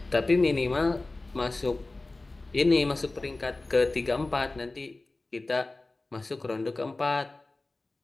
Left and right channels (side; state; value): right; quieter; 3.1 dB